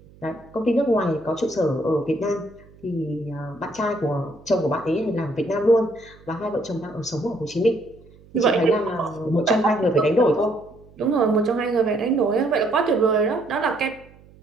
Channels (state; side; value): noise; right; hum, 25 dB below the sound